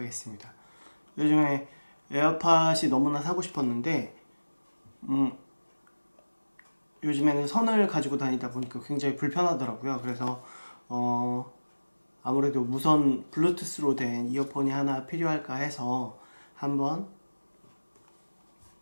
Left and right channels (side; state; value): both; inverted; correlation -1.00